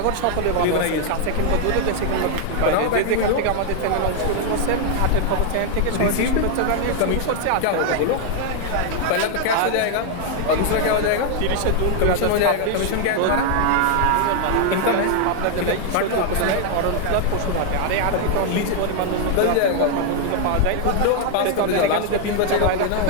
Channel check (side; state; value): both; different; correlation 0.00